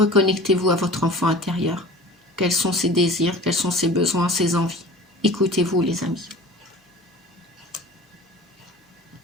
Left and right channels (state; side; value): normal; both; correlation 0.41